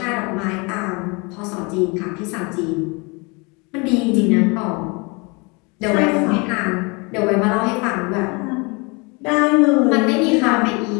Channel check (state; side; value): quieter; right; 29.1 dB